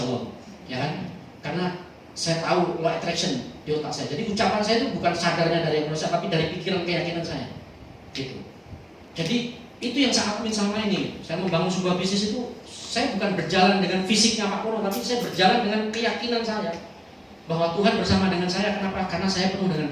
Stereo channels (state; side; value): identical; both; correlation 1.00